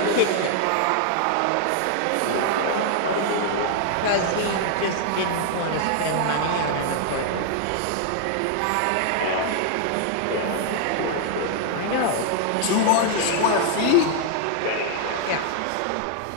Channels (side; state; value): both; different; correlation 0.00